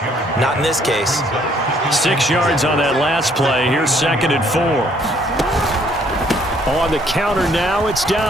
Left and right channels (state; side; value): normal; both; correlation 0.65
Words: Not in this case. 6 yards on that last play. Here's 2nd and 4. On the counter now, it's